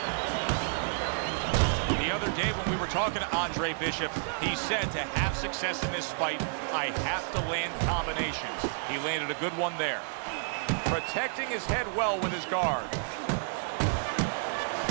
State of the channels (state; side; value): silent; left; digital silence